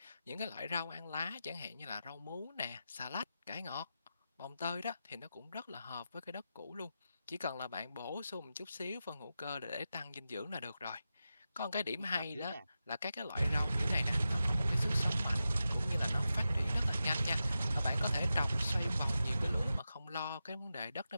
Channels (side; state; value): both; inverted; correlation -0.91